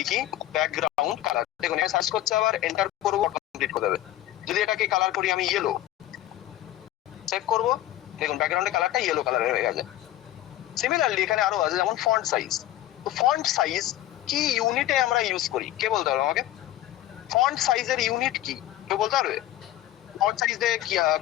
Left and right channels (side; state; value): right; quieter; 14.0 dB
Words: ব্যাকগ্রাউন্ড কালার, দেখুন এখানে সার্চ করছে, আবার এন্টার করবো, কমপ্লিট করে দেবে। যদি এটাকে কালার করি আমি ইয়েলো, সেভ করবো, দেখুন ব্যাকগ্রাউন্ডের কালারটা ইয়েলো কালারের হয়ে গেছে। সিমিলারলি এখানে আরো আছে, যেমন ফন্ট সাইজ। তো ফন্ট সাইজ কি ইউনিটে আমরা ইউজ করি, কে বলতে পারবে আমাকে? ফন্ট সাইজের ইউনিট কি কেউ বলতে পারবে? ফন্ট সাইজে